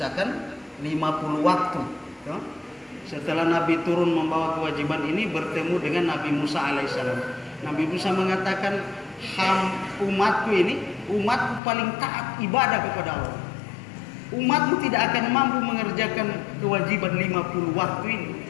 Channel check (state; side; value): drops out; right; at 11.6 s